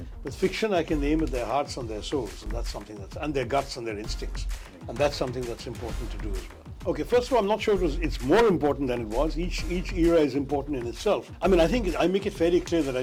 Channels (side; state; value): both; identical; correlation 1.00